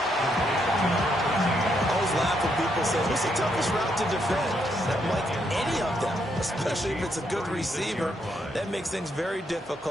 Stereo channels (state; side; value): normal; both; correlation 0.76